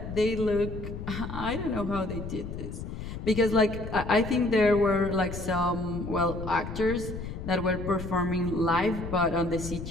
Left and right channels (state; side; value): noise; left; rumble, 8 dB below the sound